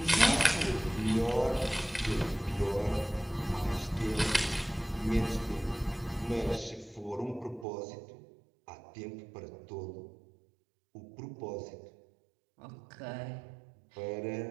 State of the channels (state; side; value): drops out; left; at 7.7 s